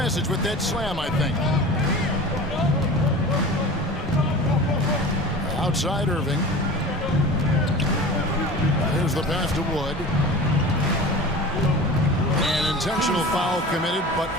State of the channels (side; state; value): both; normal; correlation 0.36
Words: with that slam, I think. Outside Irving. There's the pass to Wood. An intentional foul committed, but